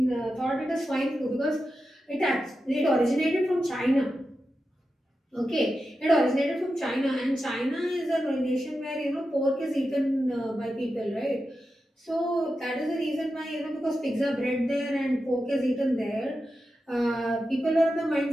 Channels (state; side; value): normal; both; correlation 0.90